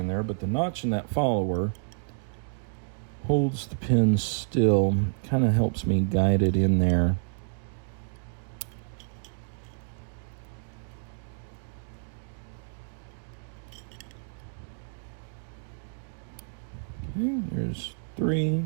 there, but the notch in that follower holds the pin still, kind of helps me guide it in there. Okay, there's 3,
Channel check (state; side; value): silent; left; digital silence